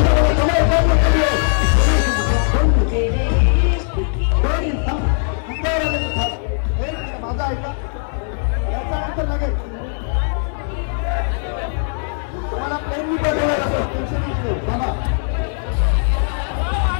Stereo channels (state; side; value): silent; right; digital silence